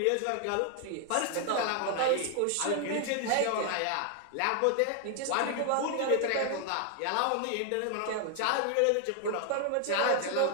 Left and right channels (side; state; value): both; different; correlation 0.00